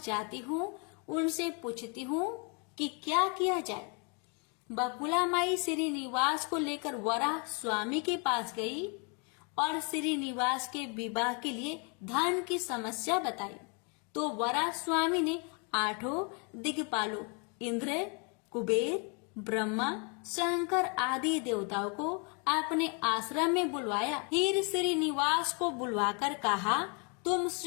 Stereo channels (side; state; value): right; quieter; 35.3 dB